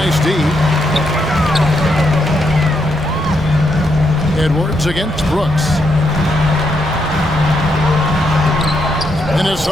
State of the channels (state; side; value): normal; both; correlation 0.79